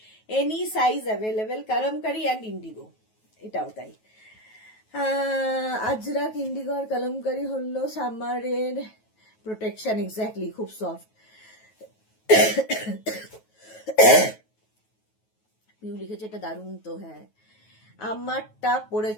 Any size available, kalamkari and Indigo, এটাও তাই। আজরাক, ইন্ডিগো আর কলমকারি হলো সামারের প্রোটেকশন। এক্স্যাক্টলি, খুব সফট। পিউ লিখেছে এটা দারুণ তো। হ্যাঁ, আমারটা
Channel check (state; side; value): late; right; 9.3 ms